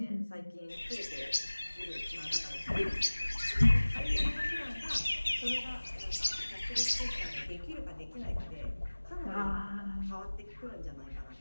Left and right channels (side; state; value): both; inverted; correlation -1.00